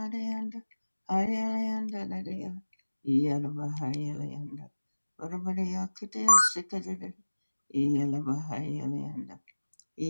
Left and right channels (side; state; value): both; inverted; correlation -1.00